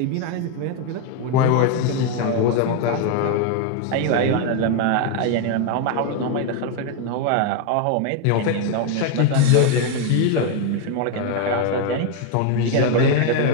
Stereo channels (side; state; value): both; different; correlation 0.01